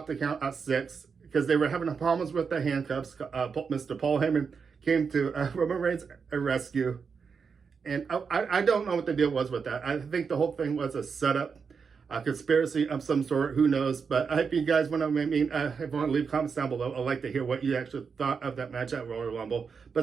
the count at 6, because they were having problems with the handcuffs. Mr. Paul Heyman came to Roman Reigns' rescue. And I don't know what the deal was with that. I think the whole thing was a setup, a conspiracy of some sort. Who knows? But if you guys want to, if you want to leave comments down below, I'd like to hear what you actually thought of that match at Royal Rumble.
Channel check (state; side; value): quieter; left; 5.7 dB